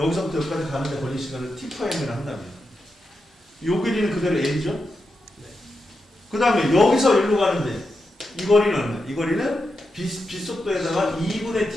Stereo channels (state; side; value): normal; both; correlation 0.87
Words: 여기까지 가는데 걸린 시간을 T'를 한다면 요 길이는 그대로 L이죠? 네. 그 다음에 여기서 일로 가는데 이 거리는 얼마야? 이 거리는 빛속도에다가 2분의